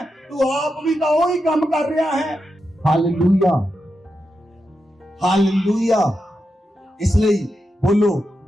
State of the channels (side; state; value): both; normal; correlation 0.87